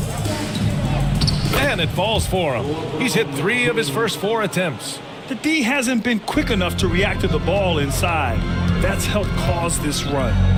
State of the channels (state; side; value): identical; both; correlation 1.00